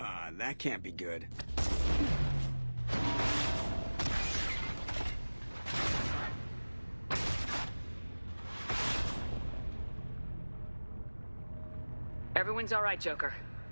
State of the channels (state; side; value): inverted; both; correlation -1.00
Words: That can't be good. Everyone's all right, Joker.